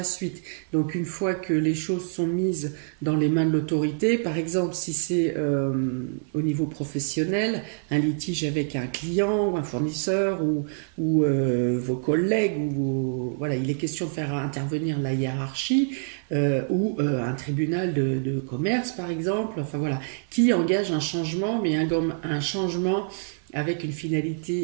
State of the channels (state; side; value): silent; left; 61 dB below the other